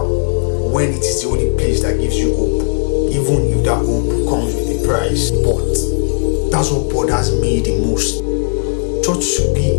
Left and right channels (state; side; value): silent; right; digital silence